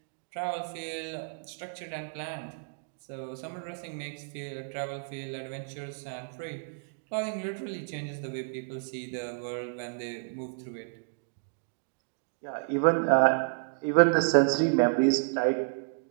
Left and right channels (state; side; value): silent; left; digital silence